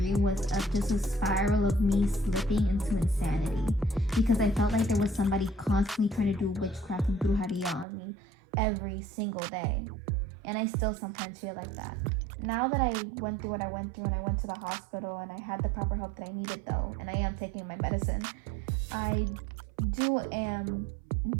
was just a spiral of me slipping into insanity, because I felt like there was somebody constantly trying to do witchcraft and brujeria on me every single day. And I still sometimes feel like that. Now that I went through what I went through and I went to the hospital and I had the proper help that I needed though, and I am taking my medicine, I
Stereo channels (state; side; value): drops out; left; at 7.9 s